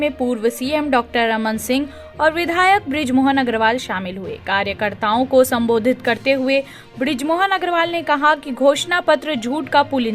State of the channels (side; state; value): both; identical; correlation 1.00